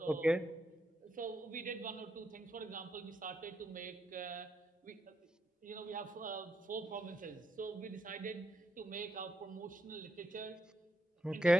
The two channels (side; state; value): both; normal; correlation 0.80